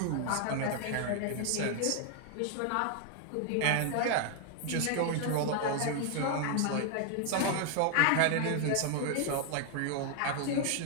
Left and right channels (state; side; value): different; both; correlation 0.00